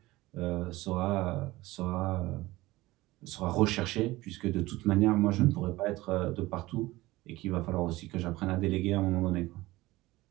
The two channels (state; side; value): quieter; left; 18.9 dB